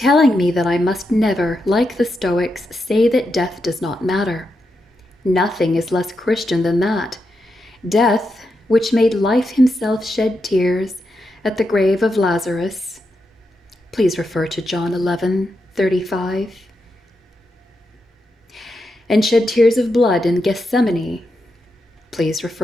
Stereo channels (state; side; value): normal; both; correlation 0.85